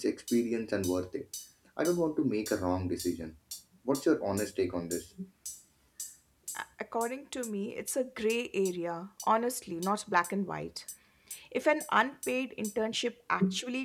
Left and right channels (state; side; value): identical; both; correlation 1.00